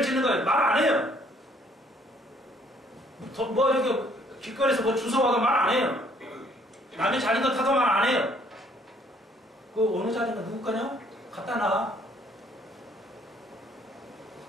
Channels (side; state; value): both; normal; correlation 0.63